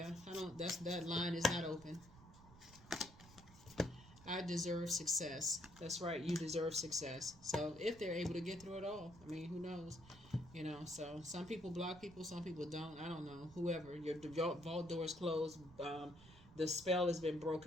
I don't. That line is not open. I deserve success. That's right. You deserve success. So if they're able to get through it all, I mean, who knows? So some people block people, some people don't. I don't know. Whoever, your vault door is closed. The spell has been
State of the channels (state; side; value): noise; right; rumble, 20 dB below the sound